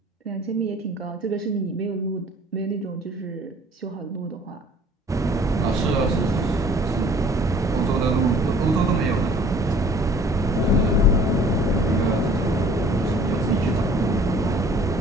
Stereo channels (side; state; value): both; normal; correlation 0.52